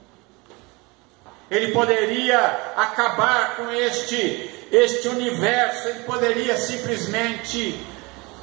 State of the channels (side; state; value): left; quieter; 25.7 dB